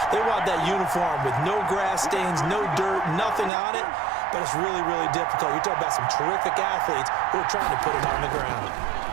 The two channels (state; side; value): drops out; left; at 3.5 s